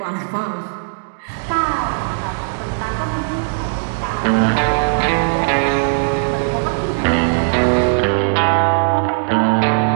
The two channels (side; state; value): left; silent; digital silence